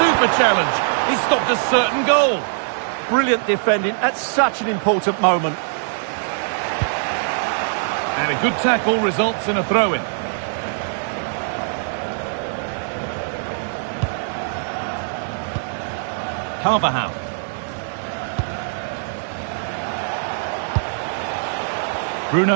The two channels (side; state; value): left; silent; digital silence